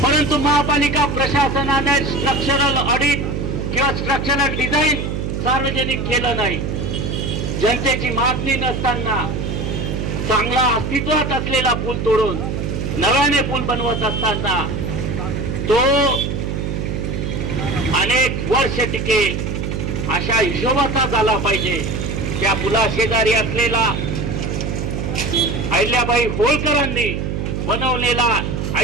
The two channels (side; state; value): right; noise; hum, 2 dB below the sound